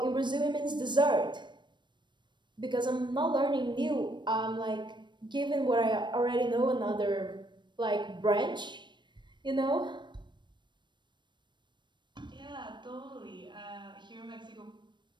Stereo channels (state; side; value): late; left; 0.22 ms